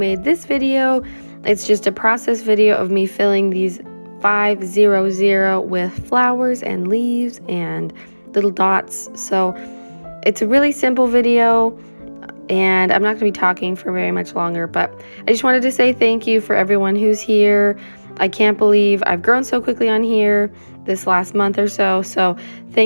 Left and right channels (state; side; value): inverted; both; correlation -1.00